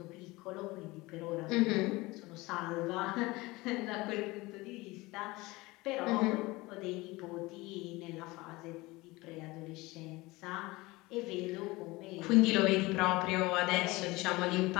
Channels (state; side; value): quieter; right; 21.6 dB